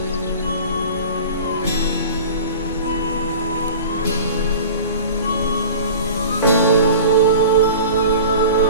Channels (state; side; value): inverted; both; correlation -0.38